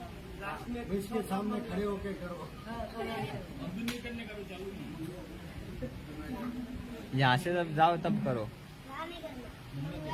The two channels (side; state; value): both; identical; correlation 1.00